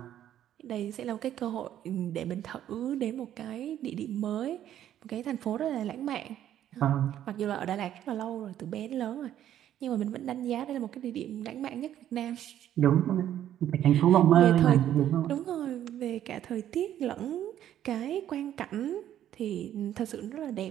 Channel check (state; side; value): quieter; left; 11.3 dB